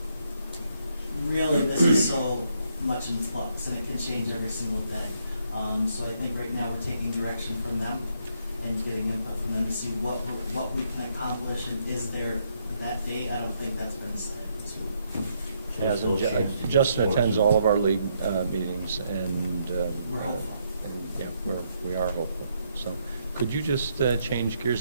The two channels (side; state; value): both; inverted; correlation -0.75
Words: really, this is so much in flux, and it can change every single day. So I think right now we're taking direction from them and getting input from them to see what we can accomplish, and is there that date? I don't think that's been decided this week. Yes, So still change Justin sports. attends all of our league meetings, and We're hopeful. And yeah, we are hopeful. So, could you just change